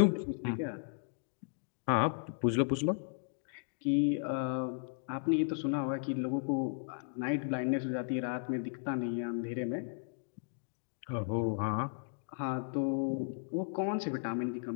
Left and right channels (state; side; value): silent; right; digital silence